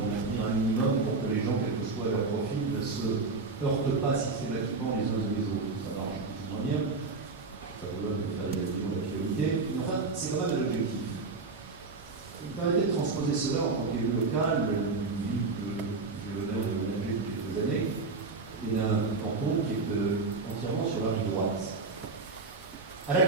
de maintenir un minimum pour que les gens, quel que soit leur profil, ne se heurtent pas systématiquement les uns et les autres. Ça marche plus ou moins bien. Ça vous donne de faire des actions d'actualité. Mais enfin, c'est quand même un objectif. Il me permettait de transposer cela en tant qu'élu local, d'une ville que j'ai l'honneur de manager depuis quelques années, et d'un canton qui est entièrement sur la rive droite. À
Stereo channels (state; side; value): quieter; left; 4.0 dB